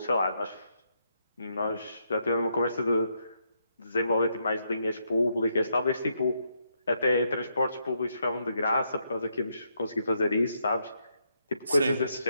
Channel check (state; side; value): inverted; both; correlation -0.78